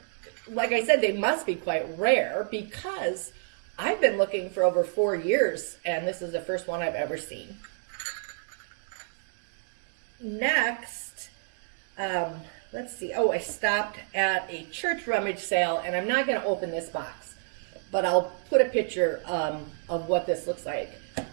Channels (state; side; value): silent; left; digital silence